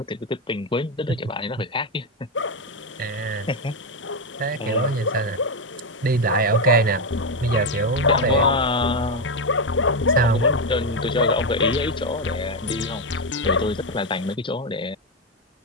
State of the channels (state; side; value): normal; both; correlation 0.07